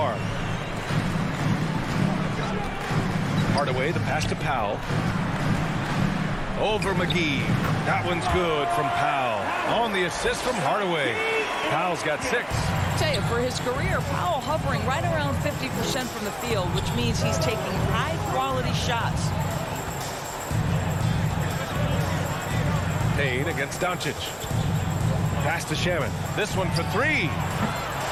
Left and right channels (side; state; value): both; identical; correlation 1.00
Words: Hardaway, the pass to Powell. Over McGee. That one's good from Powell. On the assist from Hardaway. Powell's got 6. I tell you, for his career, Powell hovering right around 50% from the field, which means he's taking high-quality shots. Payne against Doncic. Pass to Shamet. This one for 3.